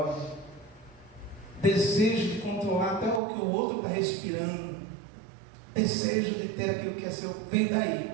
desejo de controlar até o que o outro está respirando, desejo de ter aquilo que é seu. Vem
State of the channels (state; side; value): drops out; left; at 3.2 s